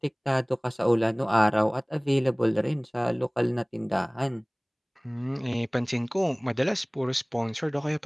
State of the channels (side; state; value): both; identical; correlation 1.00